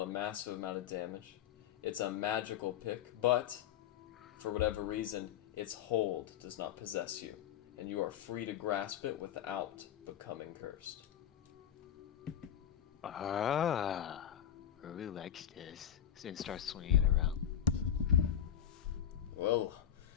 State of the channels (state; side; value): quieter; right; 10.2 dB